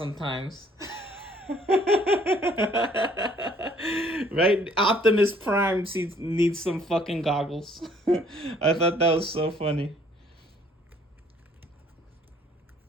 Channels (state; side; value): normal; both; correlation 0.60